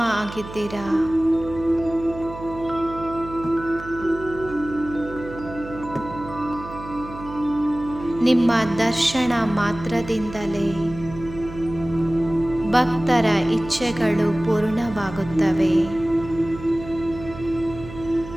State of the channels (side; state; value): right; noise; hum, 13 dB below the sound